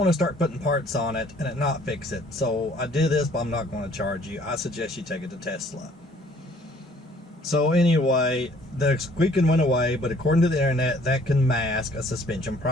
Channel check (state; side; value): normal; both; correlation 0.59